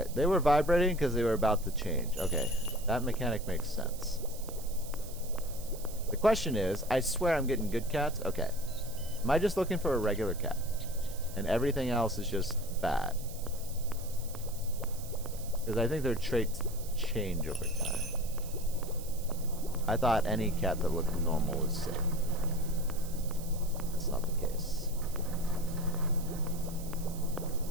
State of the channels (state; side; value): noise; right; hiss, 15 dB below the sound